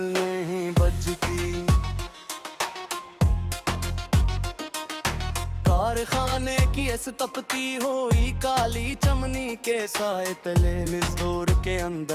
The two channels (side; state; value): both; identical; correlation 1.00